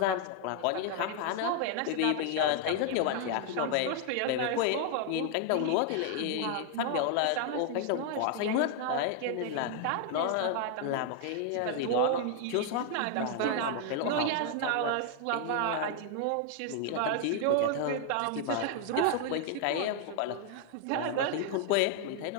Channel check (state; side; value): different; both; correlation 0.00